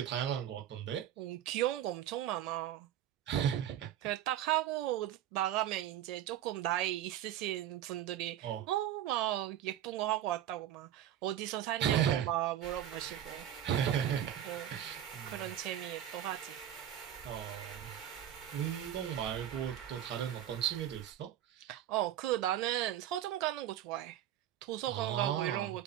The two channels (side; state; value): left; quieter; 11.3 dB